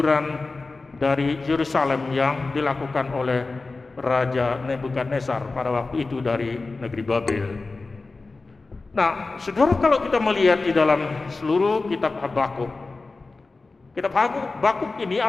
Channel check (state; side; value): quieter; right; 3.7 dB